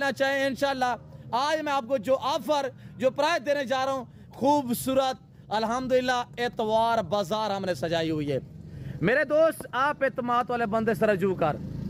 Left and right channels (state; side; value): identical; both; correlation 1.00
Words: चाहें इंशाल्लाह। आज मैं आपको जो ऑफर जो प्राइस देने जा रहा हूँ, खूबसूरत अल्हम्दुलिल्लाह एतवार बाजार हमने सजाई हुई है। मेरे दोस्त आप एतमाद वाले बंदे से रजू कर,